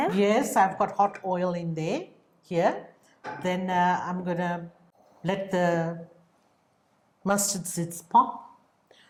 Yes, I've got hot oil in there, here. Then I'm going to let the mustard seeds pop.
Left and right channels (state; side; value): identical; both; correlation 1.00